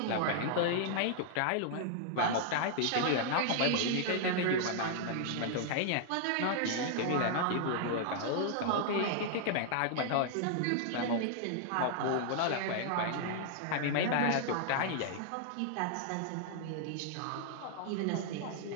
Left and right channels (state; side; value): different; both; correlation -0.01